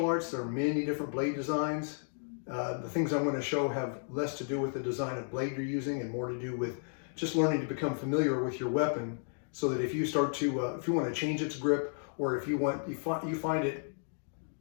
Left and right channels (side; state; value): right; silent; digital silence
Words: arts, there are many different blade designs. The things I'm going to show have less to do with the design of blade you're using and more to do with just learning to become familiar with your weapon, so that if you start to, if you want to change its grip, or if you find it